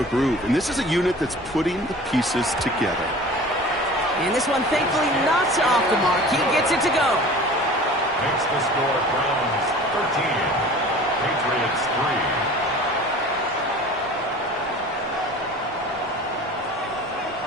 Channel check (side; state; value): both; normal; correlation 0.42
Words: groove. And this is a unit that's putting the pieces together. And this one, thankfully, not off the mark. He gets it to go. Makes the score Browns 13. Patriots 3.